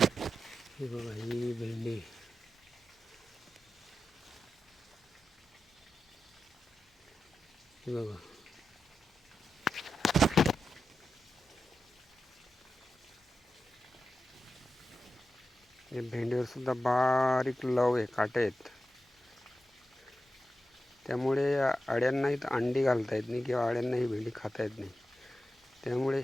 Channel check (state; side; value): normal; both; correlation 0.91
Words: बघा ही भेंडी बघा. या भेंडीवर सुद्धा बारीक लव आहे, काटे आहेत. त्यामुळे अळ्यांनाही अंडी घालता येत नाही किंवा अळ्यांनाही भेंडी खाता येत नाही. त्यामुळे